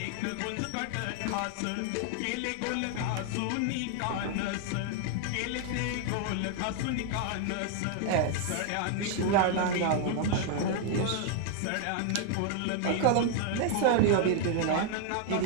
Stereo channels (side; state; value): both; different; correlation 0.00